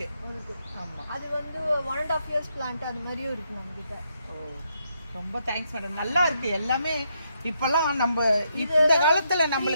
அது வந்து 1.5 years பிளான்ட் அது மாதிரியும் இருக்கு நம்ம கிட்ட. ரொம்ப தேங்க்ஸ் மேடம், நல்லா இருக்கு எல்லாமே. இப்பெல்லாம் நம்ம இந்த காலத்துல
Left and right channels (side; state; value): both; inverted; correlation -0.78